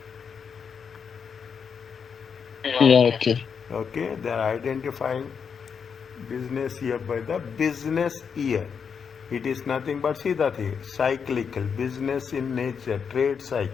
Yeah, okay. Okay, they are identifying business year by the business year. It is nothing but, see the thing, cyclical, business in nature, trade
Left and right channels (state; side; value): quieter; right; 6.5 dB